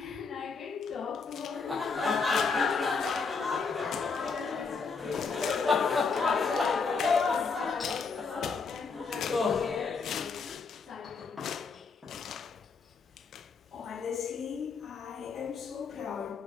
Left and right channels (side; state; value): right; quieter; 5.0 dB